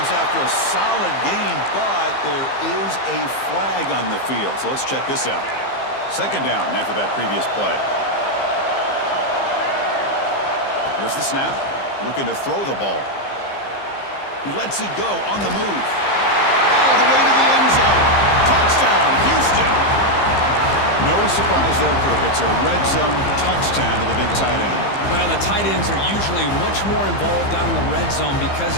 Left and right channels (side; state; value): right; late; 15 ms